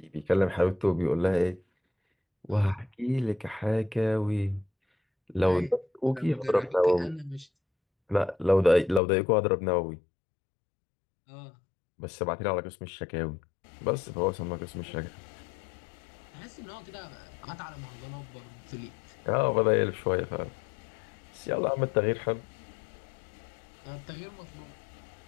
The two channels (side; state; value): right; drops out; at 9.0 s